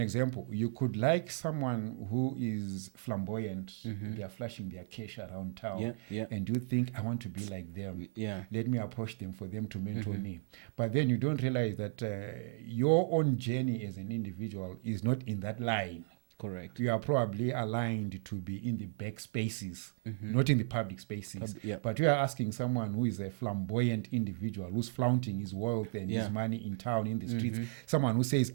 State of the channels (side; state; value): left; silent; digital silence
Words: example, you could like someone who is flamboyant, they are flashing their cash around town, and you think, I want to be like them. Let me approach them for them to mentor me. But then you don't realize that your own journey as an individual is not in that line. Correct. You are probably aligned to be in the back spaces, not in the public spaces. But you are asking someone who is a flamboyant individual, who's flaunting his wealth and his money in town, in the streets, someone who says,